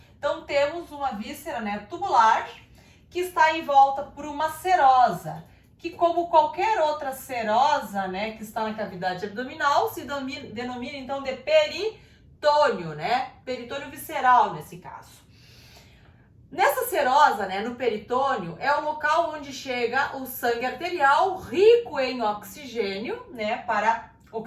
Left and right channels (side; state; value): both; identical; correlation 1.00